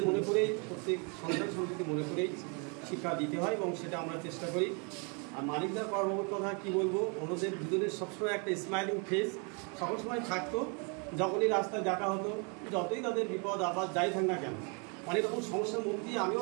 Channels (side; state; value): left; quieter; 35.1 dB